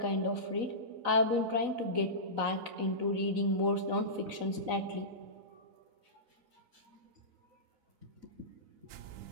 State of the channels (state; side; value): late; left; 4.0 ms